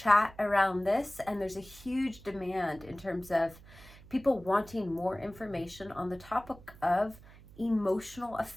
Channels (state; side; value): noise; right; hum, 21 dB below the sound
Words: around this, and there's a huge demand in terms of people wanting more information on the topic of emotional